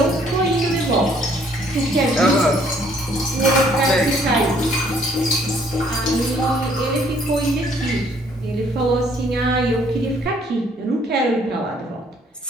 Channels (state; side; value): normal; both; correlation 0.63